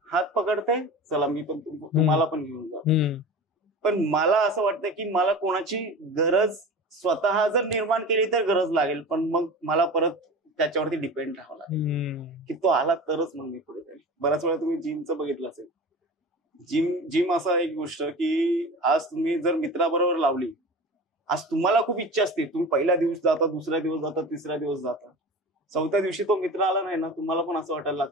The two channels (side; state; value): both; normal; correlation 0.33